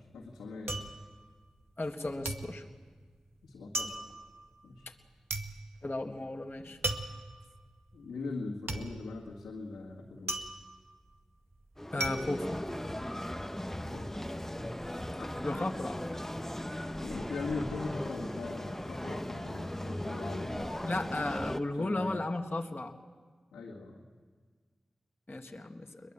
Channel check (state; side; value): normal; both; correlation 0.89